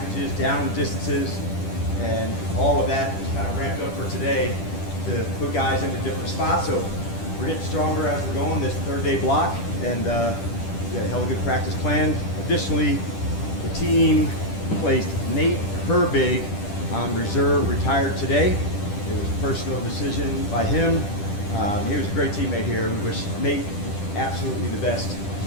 down and distances, and all of that is kind of ramped up for today to put guys into different spots. So we're getting stronger as we're going this 3rd-day block, and we got a hell of a good practice plan. Additionally, the team placed Nate Herbig on reserve, retired today. It was a personal decision by him. He was a great teammate here. We wish Nate absolutely the best,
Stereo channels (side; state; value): right; late; 10 ms